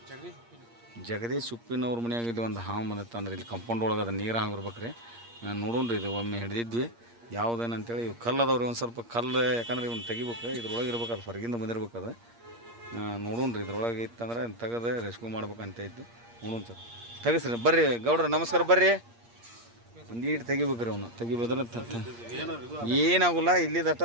ಜಗದೀಶ್ ಉಪ್ಪಿನವ್ರ ಮನೆಯಾಗ ಇಲ್ಲಿ ಒಂದು ಹಾವು ಮದತ್ ಅಂದ್ರೆ ಇಲ್ಲಿ ಕಂಪೌಂಡ್ ಒಳಗೆ ಅದು ನೀರು ಹಾಗಿರ್ಬೇಕು ರೀ. ನೋಡೋಣ್ರಿ ಇದು ಒಮ್ಮೆ ಹಿಡಿದಿದ್ವಿ ಯಾವುದೇನಂತೇಳಿ. ಇವು ಕಲ್ಲು ಅದಾವ್ರಿ, ಒಂದು ಸ್ವಲ್ಪ ಕಲ್ಲು, ಯಾಕಂದ್ರೆ ಇವ್ನು ತೆಗಿಬೇಕು. ಇದ್ರೊಳಗೆ ಇರ್ಬೇಕು, ಅದು ಹೊರಗಿಂದ ಬಂದಿರ್ಬೇಕು. ಅದು ನೋಡೋಣ್ರಿ ಇದ್ರೊಳಗೆ ಇತ್ತಂದ್ರೆ ತೆಗೆದು ರೆಸ್ಕ್ಯೂ ಮಾಡ್ಬೇಕಂತ ಇದ್ದು. ನೋಡೋಣ ಸರ್, ತೆಗಿಸ್ರಿ. ಬರ್ರಿ ಗೌಡ್ರ, ನಮಸ್ಕಾರ. ಬರ್ರಿ, ಒಂದು ಈಟು ತೆಗಿಬೇಕ್ರಿ. ಅವನು ತೆಗಿಬೋದ್ರೆ ಏನಾಗೋಲ್ಲ. ಇಲ್ಲಿದ್ದು ಅಷ್ಟ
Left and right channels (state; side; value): late; left; 8.6 ms